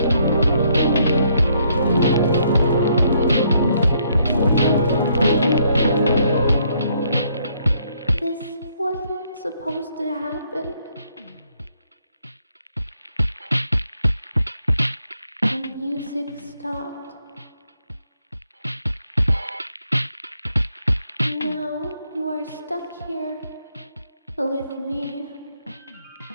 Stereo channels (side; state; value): both; inverted; correlation -0.71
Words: This wasn't supposed to happen. The music stopped. Now you are stuck here with me.